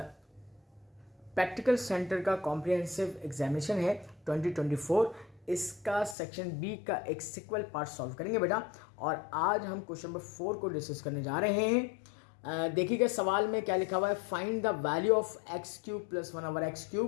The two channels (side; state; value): right; drops out; at 6.2 s